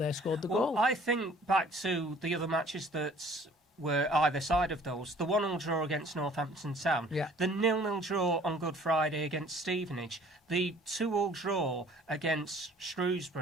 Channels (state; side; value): normal; both; correlation 0.53